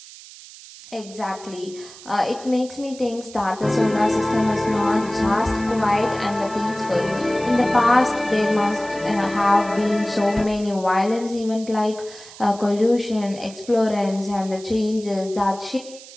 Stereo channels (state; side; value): noise; right; hiss, 18 dB below the sound